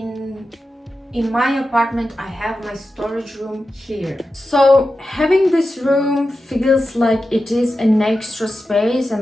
my apartment, I have my storage room here. So having this room feels like it is an extra space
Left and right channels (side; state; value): both; normal; correlation 0.92